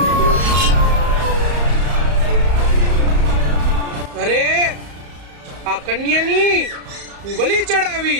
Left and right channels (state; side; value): late; left; 34 ms